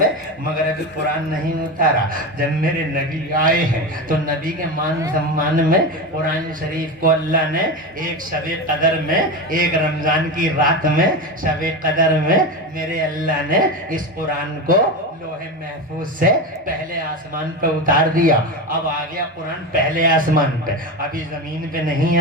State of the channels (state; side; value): normal; both; correlation 0.21